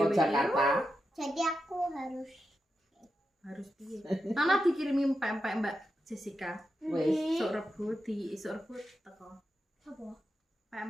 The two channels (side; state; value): both; normal; correlation 0.88